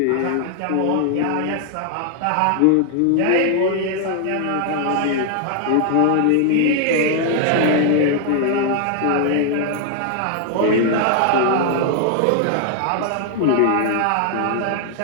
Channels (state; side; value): different; both; correlation 0.00